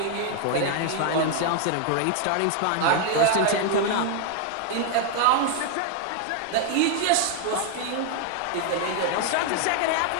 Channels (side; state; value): both; different; correlation 0.00